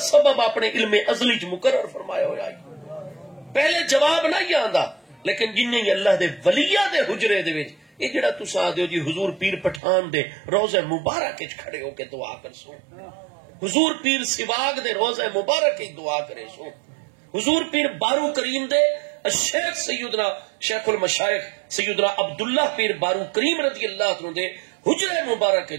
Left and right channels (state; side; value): drops out; left; at 9.8 s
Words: سبب اپنے علم ازلی چ مقرر فرمایا ہوا ہے. پہلے جواب نہ ہی آندا، لیکن جنہیں اللہ دے ولیہ دے حجرے دے وچ یہ جڑا تساں آدھے ہو جی حضور پیر پٹھان دے روضہ مبارک وچ کھڑے ہو کے دعا کر سو، حضور پیر سواگ دے روضہ مبارک وچ دعا کرے سو، حضور پیر بارو کریم دے شیخ سیدنا شیخ المشائخ سیدنا عبداللہ پیر بارو کریم رضی اللہ عنہ دے حجرہ مبارک